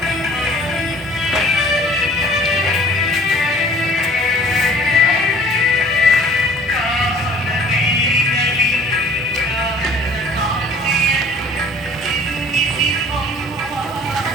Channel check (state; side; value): normal; both; correlation 0.52